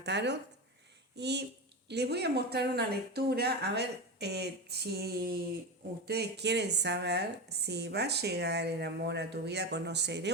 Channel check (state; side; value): normal; both; correlation 0.20